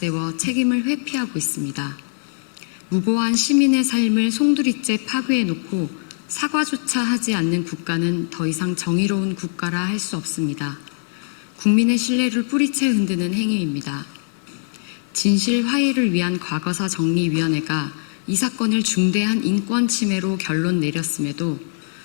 책임을 회피하고 있습니다. 무고한 시민의 삶을 송두리째 파괴해놓고 사과조차 하지 않는 국가는 더 이상 정의로운 국가라 할 수 없습니다. 국민의 신뢰를 뿌리채 흔드는 행위입니다. 진실 화해를 위한 과거사 정리위원회가 이 사건을 중대한 인권 침해로 결론 내렸음에도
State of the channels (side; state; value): right; silent; digital silence